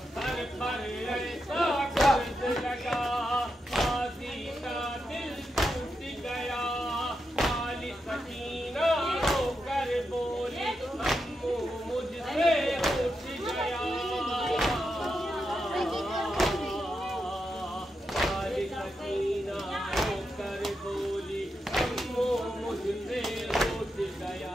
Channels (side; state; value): both; normal; correlation 0.86